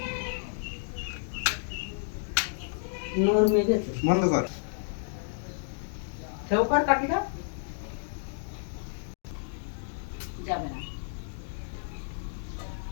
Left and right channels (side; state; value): right; silent; digital silence